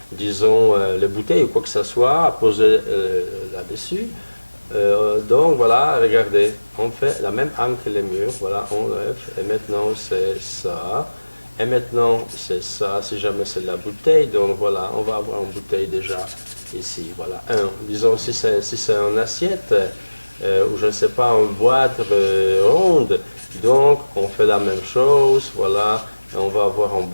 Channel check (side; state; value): both; inverted; correlation -1.00